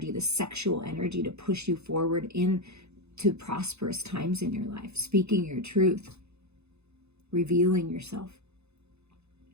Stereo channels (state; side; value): late; left; 0.80 ms